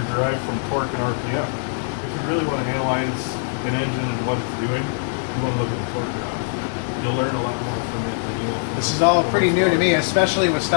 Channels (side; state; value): right; silent; digital silence